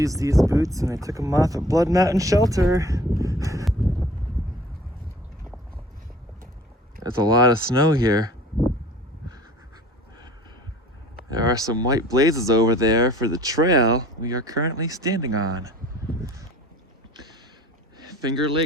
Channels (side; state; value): both; normal; correlation 0.48